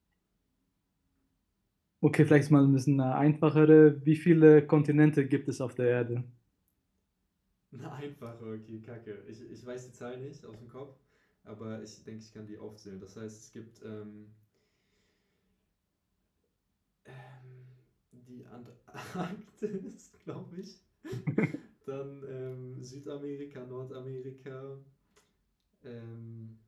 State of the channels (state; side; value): identical; both; correlation 1.00